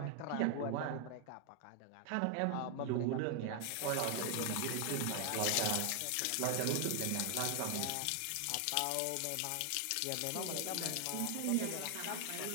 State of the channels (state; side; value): different; both; correlation 0.00